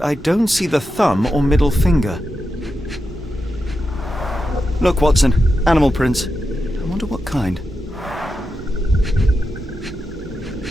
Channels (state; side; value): normal; both; correlation 0.88